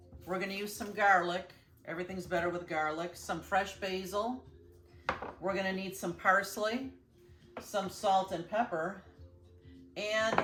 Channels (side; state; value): both; identical; correlation 1.00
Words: We're going to use some garlic. Everything's better with garlic. Some fresh basil. We're going to need some parsley, some salt and pepper, and